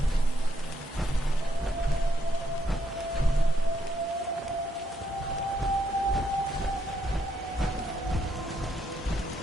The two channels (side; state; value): both; normal; correlation 0.76